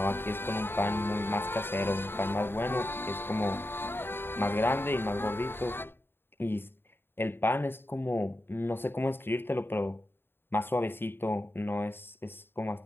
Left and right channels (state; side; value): late; right; 0.11 ms